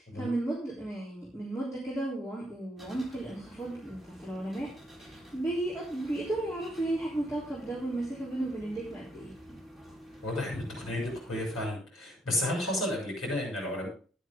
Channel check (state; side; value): normal; both; correlation 0.72